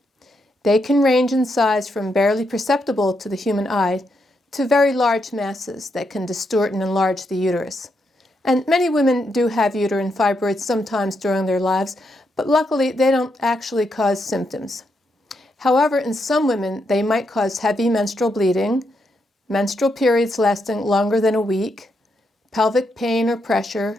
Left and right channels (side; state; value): both; normal; correlation 0.81